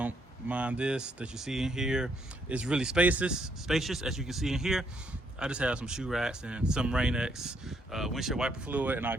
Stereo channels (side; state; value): both; normal; correlation 0.72